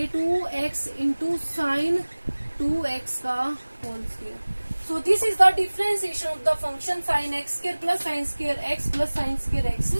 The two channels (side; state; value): both; inverted; correlation -1.00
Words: 2x इंटू साइन 2x का whole square. So this is the differentiation of the function sin x square plus sin square x plus sin square x